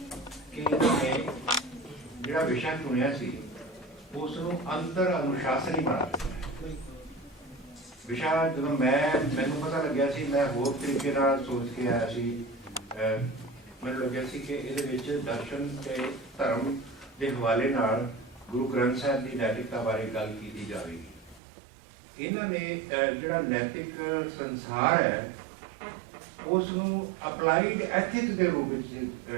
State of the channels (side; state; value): left; drops out; at 21.4 s